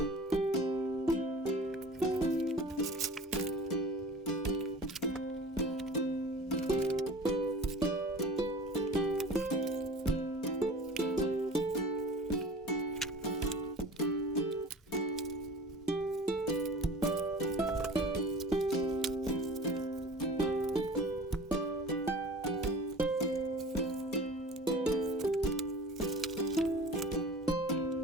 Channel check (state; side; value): normal; both; correlation 0.40